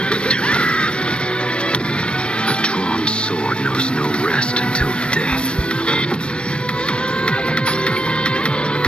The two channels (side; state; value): right; late; 0.056 ms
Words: A drawn sword knows no rest until death.